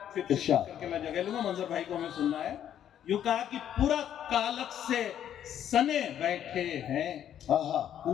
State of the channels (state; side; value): quieter; right; 10.2 dB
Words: फिर इरशाद। करके मैं जगह लूंगा, मंजर भाई को हमें सुनना है। यूं कहा कि पूरा कालक से सने बैठे हैं, हाँ